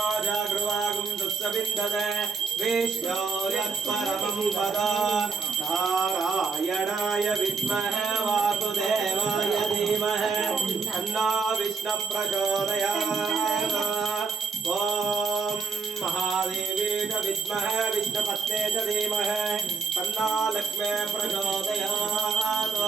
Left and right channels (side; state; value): left; quieter; 4.8 dB